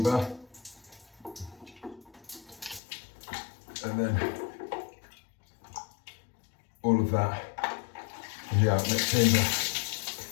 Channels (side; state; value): right; drops out; at 2.8 s